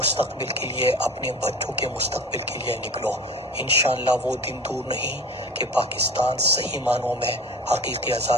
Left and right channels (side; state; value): both; normal; correlation 0.38